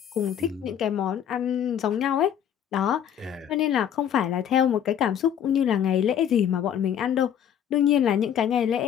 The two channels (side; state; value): right; quieter; 9.3 dB